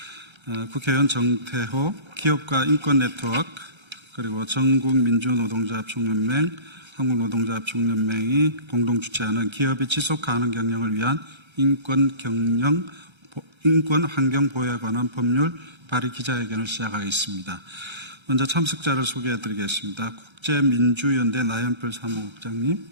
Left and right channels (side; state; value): left; late; 1.3 ms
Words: 국회의원 정태호, 기업가 인권네트워크, 그리고 전국민주노동자협총연맹, 한국노동자협총연맹이 공동 주최하는 기업의 지속가능 경영을 위한 인권 환경 보호에 관한 법률 발의 기자회견을 시작하겠습니다. 먼저 참석자를 소개해 드리겠습니다. 국제민주연대 나연필 사무국장님,